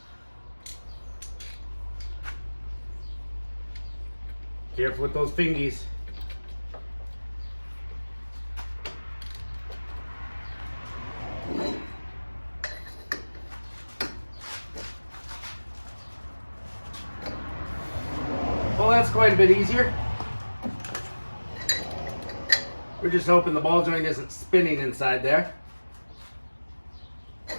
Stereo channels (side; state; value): both; inverted; correlation -1.00